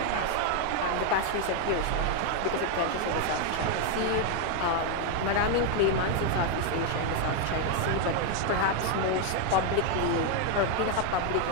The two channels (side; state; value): both; different; correlation 0.01